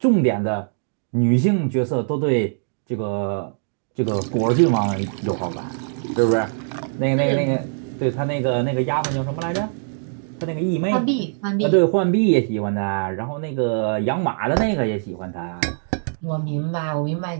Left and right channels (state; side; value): silent; left; digital silence